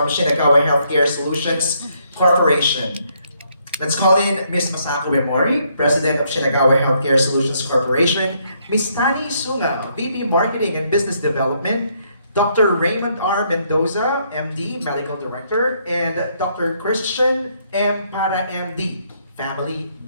Shinagawa Healthcare Solutions Corporation. Let's call in Ms. Masako Uemori, President of Shinagawa Healthcare Solutions Corporation, Ms. Tani Sunga, VP Marketing and Business Development, Dr. Raymond R. Mendoza, MD, Medical Director, and Dr. Christian M. Para, MD, Family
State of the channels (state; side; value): inverted; both; correlation -0.72